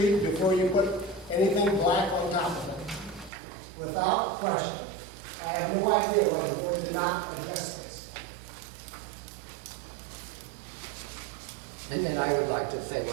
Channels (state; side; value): drops out; left; at 3.3 s